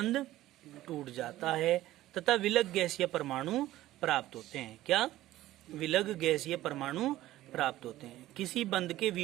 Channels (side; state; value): left; quieter; 15.2 dB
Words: टूट जाता है तथा विलग गैसीय परमाणु प्राप्त होते हैं। क्या? विलग गैसीय परमाणु प्राप्त होते हैं। किसी बंध के